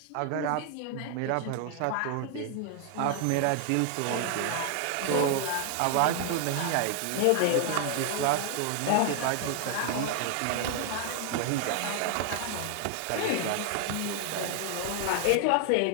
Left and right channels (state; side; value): different; both; correlation 0.00